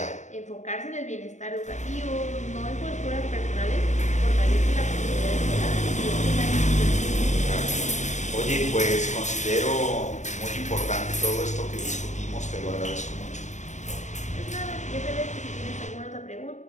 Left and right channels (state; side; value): late; right; 0.34 ms